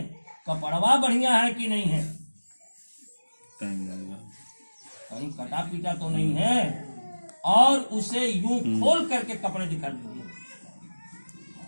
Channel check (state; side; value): inverted; both; correlation -1.00